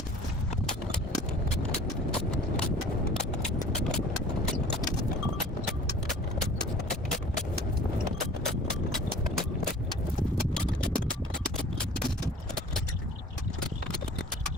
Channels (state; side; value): normal; both; correlation 0.47